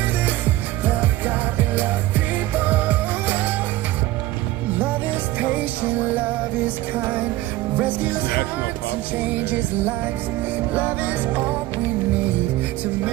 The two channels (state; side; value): quieter; left; 16.5 dB